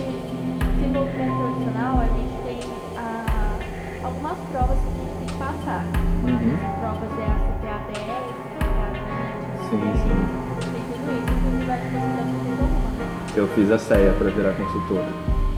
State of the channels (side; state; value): both; identical; correlation 1.00